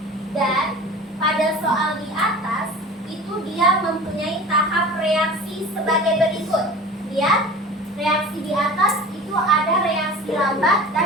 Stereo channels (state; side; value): normal; both; correlation 0.38